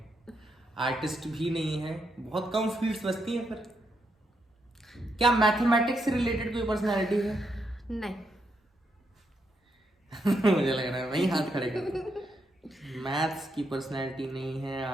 आर्टिस्ट भी नहीं है, बहुत कम फील्ड्स बचती हैं। फिर क्या मैथमेटिक्स से रिलेटेड कोई पर्सनालिटी है? नहीं। मुझे लग रहा है वही हाथ खड़े कर। मैथ्स की पर्सनालिटी नहीं है,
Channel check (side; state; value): both; normal; correlation 0.80